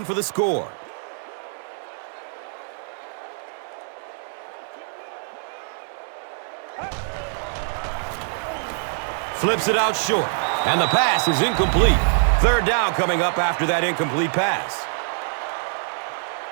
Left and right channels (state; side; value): silent; left; digital silence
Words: for the score. Flips it out short, and the pass is incomplete. Third down coming up after that incomplete pass.